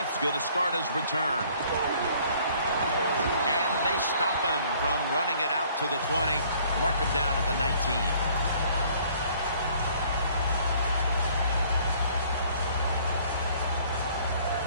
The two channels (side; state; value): both; inverted; correlation -0.58